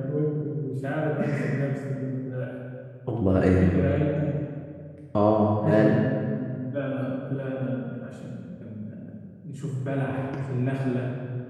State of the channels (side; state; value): both; identical; correlation 1.00